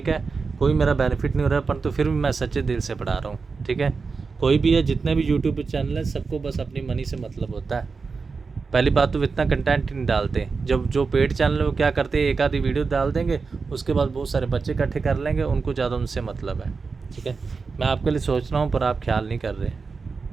है, कोई मेरा बेनिफिट नहीं हो रहा है, परंतु फिर भी मैं सच्चे दिल से पढ़ा रहा हूँ, ठीक है। कोई भी है, जितने भी यूट्यूब पर चैनल है, सबको बस अपनी मनी से मतलब होता है। पहली बात तो इतना कंटेंट नहीं डालते, जब जो पेड चैनल है वो क्या करते हैं, एक आधी वीडियो डाल देंगे, उसके बाद बहुत सारे बच्चे इकट्ठे कर लेंगे, उनको ज़्यादा उनसे मतलब है, ठीक है। मैं आपके लिए सोच रहा हूँ पर आप ख्याल नहीं कर रहे।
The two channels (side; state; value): left; quieter; 4.7 dB